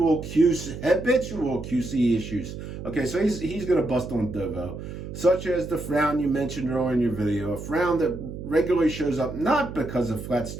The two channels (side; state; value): right; noise; hum, 9 dB below the sound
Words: QC issues. Okay, so he's going to bust on Dovo, such as the frown you mentioned earlier in your video, a frown that regularly shows up not because of flat